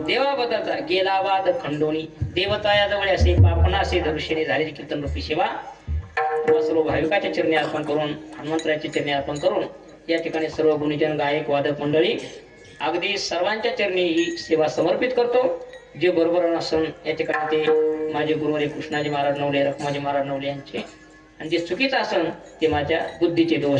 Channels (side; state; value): both; identical; correlation 1.00